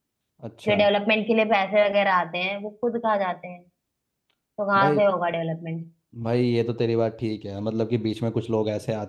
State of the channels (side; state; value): both; identical; correlation 1.00